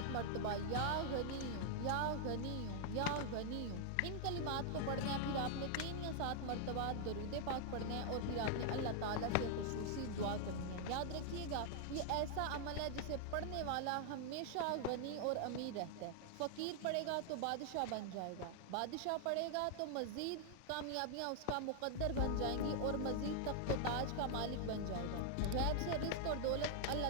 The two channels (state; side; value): different; both; correlation -0.01